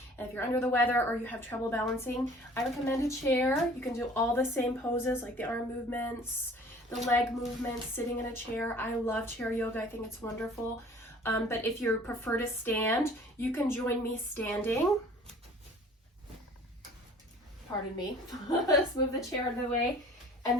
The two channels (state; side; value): normal; both; correlation 0.49